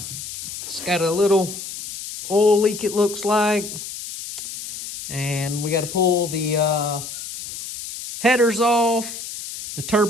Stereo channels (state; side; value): noise; left; hiss, 9 dB below the sound